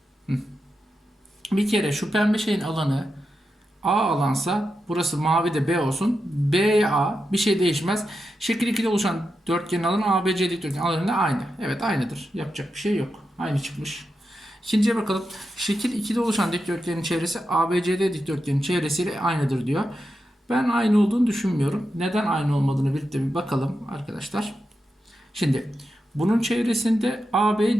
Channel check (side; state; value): both; normal; correlation 0.88